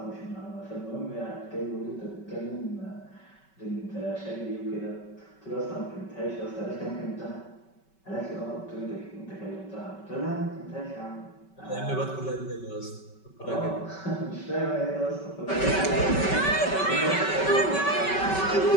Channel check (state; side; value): late; right; 5.3 ms